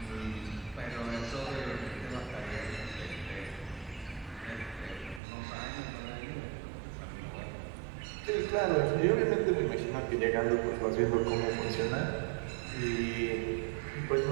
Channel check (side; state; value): left; drops out; at 5.2 s